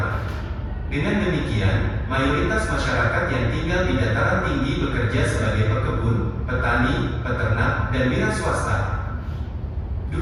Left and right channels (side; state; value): both; identical; correlation 1.00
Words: Dengan demikian, mayoritas masyarakat yang tinggal di dataran tinggi bekerja sebagai pekebun, petani, peternak, dan wira swasta.